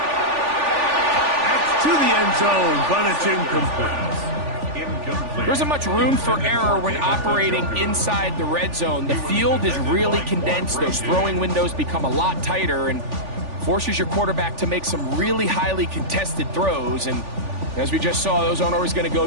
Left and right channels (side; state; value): left; late; 3.4 ms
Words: That's to the end zone, but it's incomplete. There isn't much room for error when operating inside the red zone. The field is really condensed. Those throwing windows become a lot tighter and forces your quarterback to make some really highly contested throws. And as we just saw, those aren't always going to go